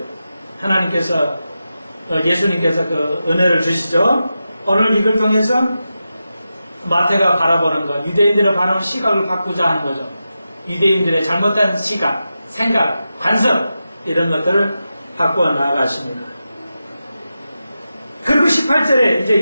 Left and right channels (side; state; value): both; inverted; correlation -0.91